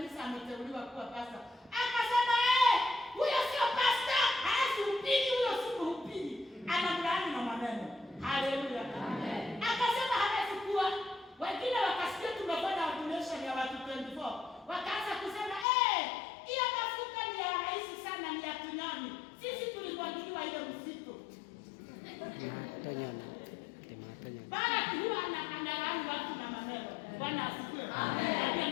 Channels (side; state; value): right; drops out; at 15.7 s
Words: ameteuliwa kuwa pastor. Akasema huyo sio pastor, hahubiri, huyo si mhubiri. Anamlaani na maneno. Haleluya. Amen. Akasema hawezi kuwa. Wengine wakasikia tumefanya ordination ya watu 24. Wakaanza kusema hiyo mafuta ni ya rahisi sana, ni ya tunyoni. Sisi tulimwagiliwa ile msitu. Tunyoni. Barak huwa analaani watu na maneno. Bwana asifiwe. Amen.